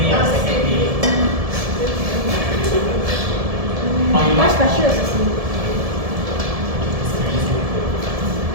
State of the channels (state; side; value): late; left; 1.7 ms